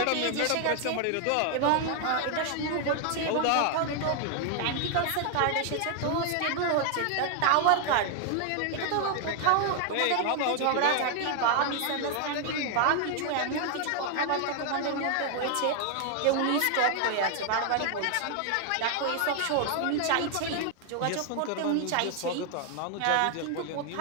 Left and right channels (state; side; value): different; both; correlation 0.00